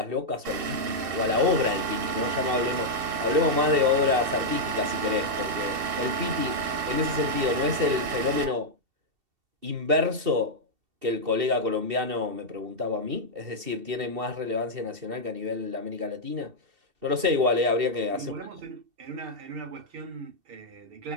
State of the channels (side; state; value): left; late; 2.7 ms